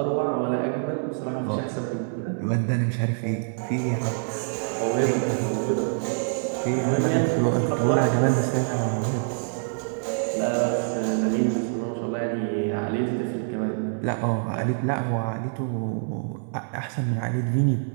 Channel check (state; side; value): silent; left; 60 dB below the other